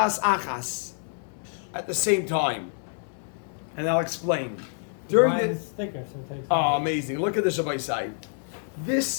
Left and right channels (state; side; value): silent; right; digital silence